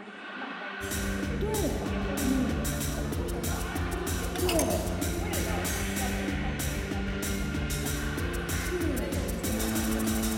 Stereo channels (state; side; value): identical; both; correlation 1.00